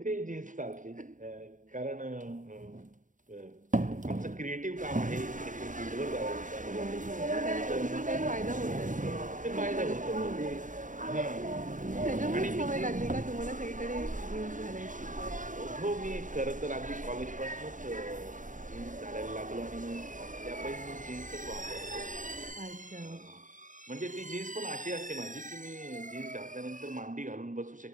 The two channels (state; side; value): late; left; 0.37 ms